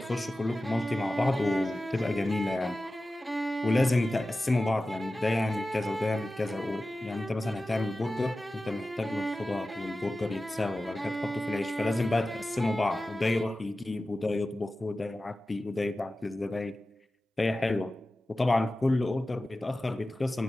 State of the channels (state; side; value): normal; both; correlation 0.95